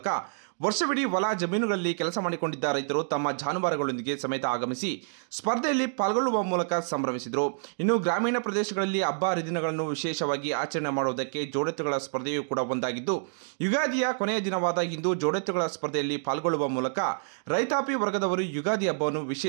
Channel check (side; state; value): left; silent; digital silence